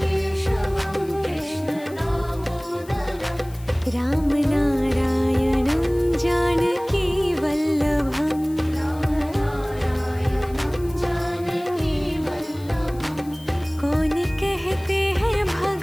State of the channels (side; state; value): left; noise; hiss, 23 dB below the sound